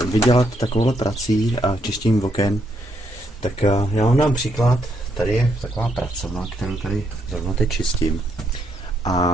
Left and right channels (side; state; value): both; normal; correlation 0.75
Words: takovouhle prací a čištěním oken, tak já vám dám příklad. Tady je taková pracovna, kterou tady zrovna teď čistím.